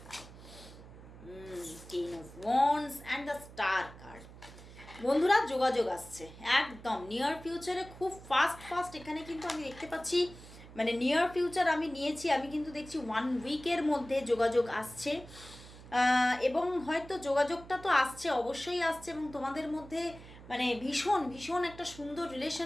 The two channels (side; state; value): right; noise; hum, 18 dB below the sound